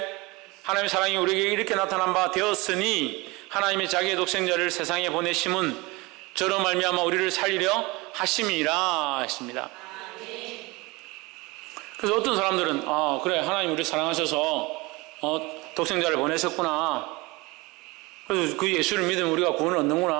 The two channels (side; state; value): left; quieter; 23.9 dB